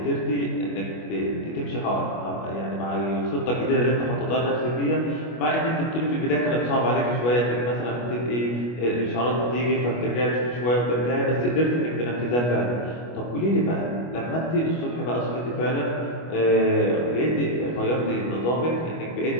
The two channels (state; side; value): late; right; 25 ms